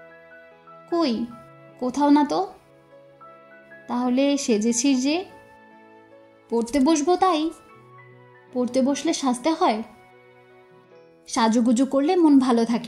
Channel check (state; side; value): identical; both; correlation 1.00